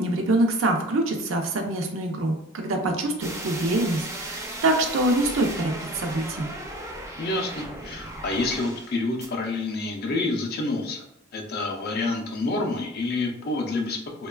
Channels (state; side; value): normal; both; correlation 0.42